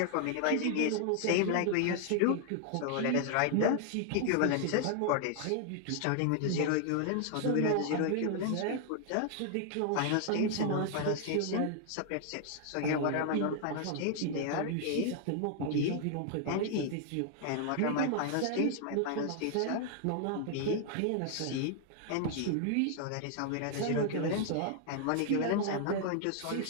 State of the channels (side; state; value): both; different; correlation 0.00